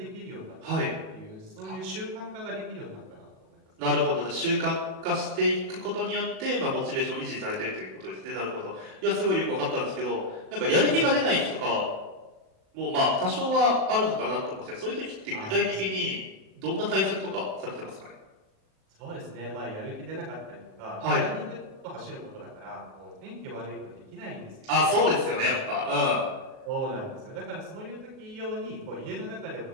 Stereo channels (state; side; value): late; left; 37 ms